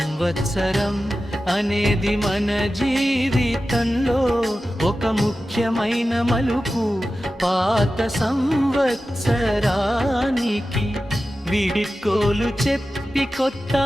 అనేది మన జీవితంలో ఒక ముఖ్యమైన మలుపు. పాత సంవత్సరానికి వీడ్కోలు చెప్పి కొత్త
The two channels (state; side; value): normal; both; correlation 0.94